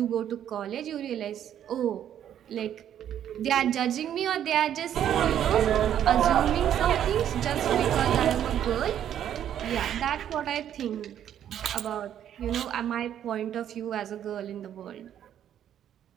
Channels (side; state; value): left; quieter; 10.2 dB